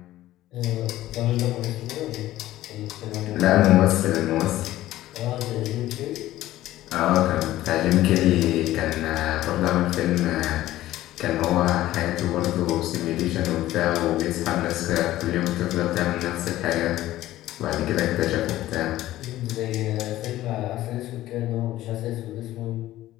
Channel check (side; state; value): right; quieter; 15.0 dB